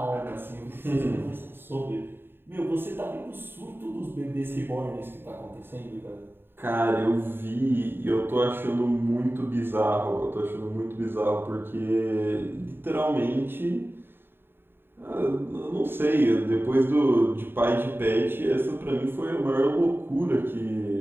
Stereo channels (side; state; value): left; late; 0.10 ms